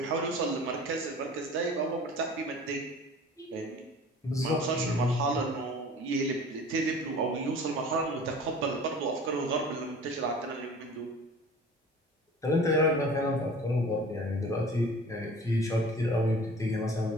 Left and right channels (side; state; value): both; normal; correlation 0.43